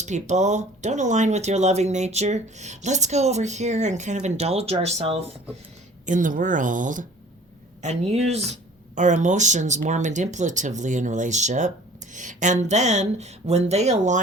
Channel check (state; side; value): normal; both; correlation 0.49